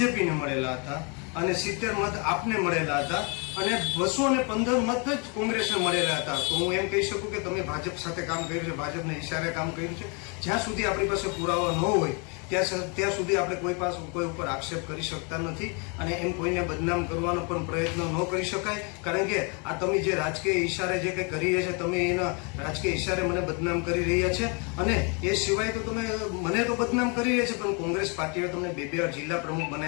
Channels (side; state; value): right; quieter; 34.0 dB